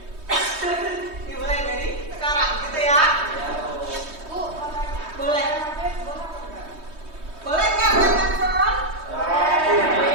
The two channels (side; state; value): left; late; 3.2 ms